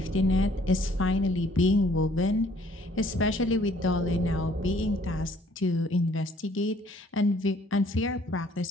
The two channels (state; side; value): normal; both; correlation 0.60